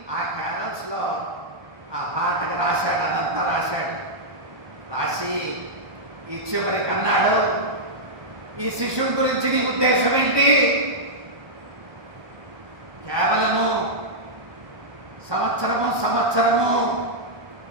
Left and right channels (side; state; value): left; late; 1.2 ms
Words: ఆ క్యారల్స్లో ఆ పాటకు రాశాడు. అదంతా రాశాడు. రాసి ఈ చివరికి అన్నాడు, ఈ శిశువు గురించి నీ ఉద్దేశం ఏంటి? కేవలము సంవత్సరము